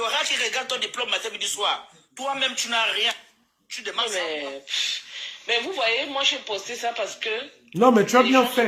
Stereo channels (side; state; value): both; identical; correlation 1.00